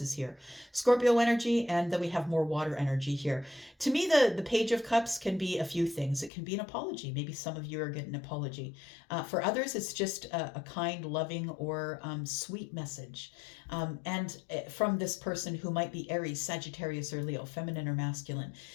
is here. Scorpio energy, and then we have more water energy here. To me, the Page of Cups can be a few things. It can be an apology. Maybe some of you are getting an apology. For others, it's just a kind, loving, or sweet message. And from this person who might be Aries, Sagittarius, or Leo, feminine or masculine.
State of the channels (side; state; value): right; drops out; at 6.3 s